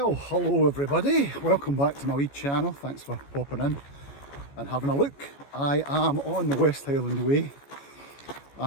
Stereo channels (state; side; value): late; right; 14 ms